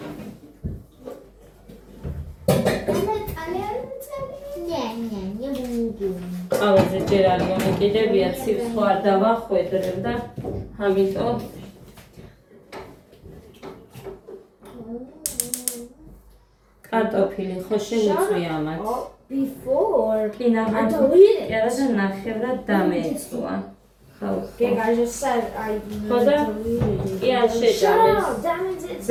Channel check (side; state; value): both; identical; correlation 1.00